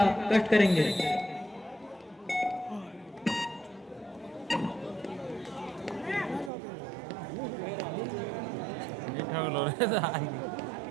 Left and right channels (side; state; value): left; drops out; at 6.5 s